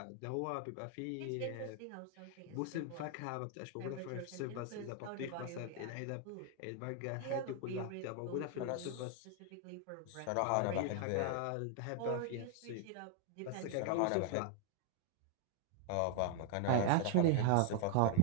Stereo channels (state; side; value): different; both; correlation 0.00